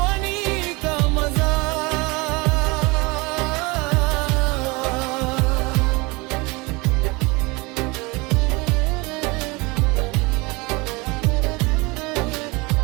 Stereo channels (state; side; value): quieter; left; 25.6 dB